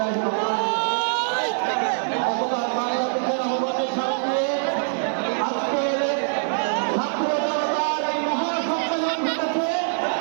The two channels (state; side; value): silent; left; 60 dB below the other